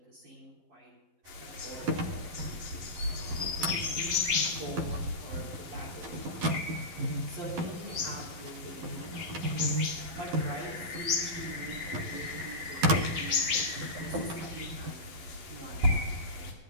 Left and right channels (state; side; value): late; left; 12 ms